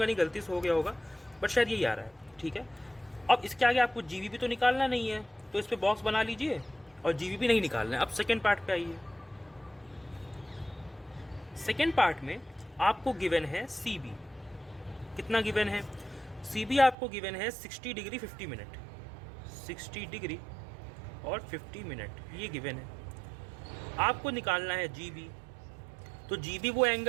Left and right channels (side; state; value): left; drops out; at 16.9 s